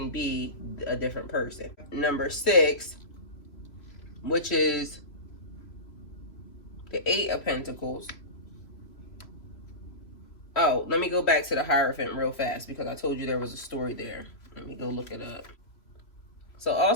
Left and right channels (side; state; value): right; late; 3.0 ms